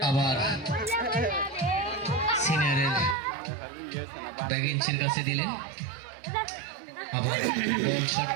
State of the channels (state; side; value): drops out; left; at 3.2 s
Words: আবার সিনিয়রের ব্যাগিন্সের কাছে দিলেন। আবার বল শট